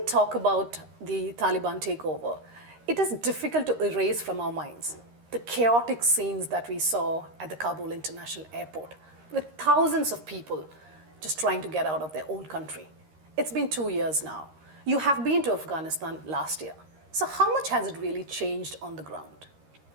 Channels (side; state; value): left; late; 13 ms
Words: talk about the Taliban takeover, it is difficult to erase from our minds the chaotic scenes that we saw at the Kabul International Airport, with thousands of people just trying to get out of their own country. It's been 2 years now. You have been to Afghanistan last year. So how much has it really changed on the ground?